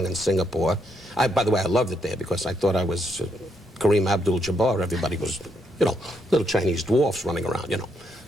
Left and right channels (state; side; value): normal; both; correlation 0.77